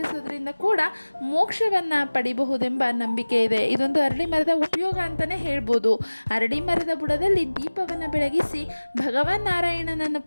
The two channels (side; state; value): both; inverted; correlation -1.00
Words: ಕೂಡ ಮೋಕ್ಷವನ್ನು ಪಡಿಬಹುದೆಂಬ ನಂಬಿಕೆ ಇದೆ. ಇದೊಂದು ಅರಳಿ ಮರದ ಉಪಯೋಗ ಅಂತಲೇ ಹೇಳ್ಬೋದು. ಅರಳಿ ಮರದ ಬುಡದಲ್ಲಿ ದೀಪವನ್ನು ಬೆಳಗಿಸಿ ಭಗವಾನ್ ನಾರಾಯಣನನ್ನು